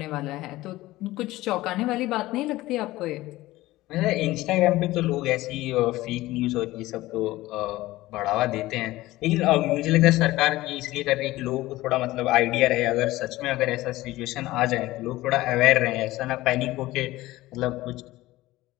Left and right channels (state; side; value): quieter; right; 17.6 dB